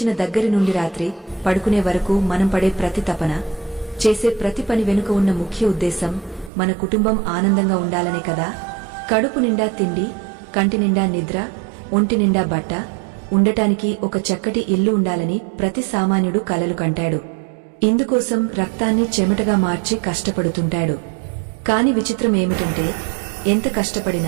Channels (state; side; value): drops out; left; at 6.5 s